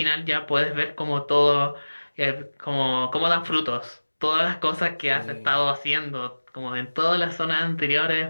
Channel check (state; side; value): inverted; both; correlation -1.00